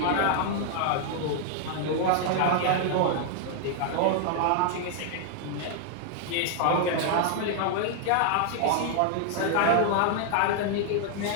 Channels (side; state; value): both; different; correlation 0.00